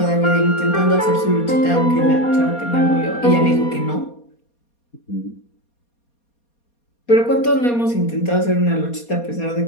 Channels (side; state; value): right; late; 4.2 ms